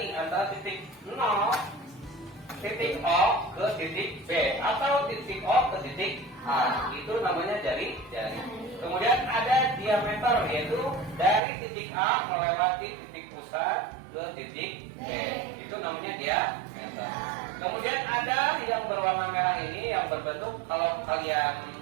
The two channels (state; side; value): drops out; left; at 11.4 s